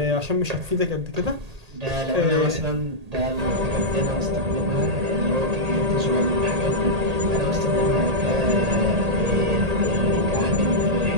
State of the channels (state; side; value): late; left; 1.8 ms